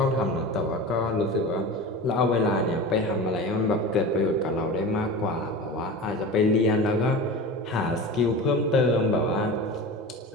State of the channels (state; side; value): normal; both; correlation 0.31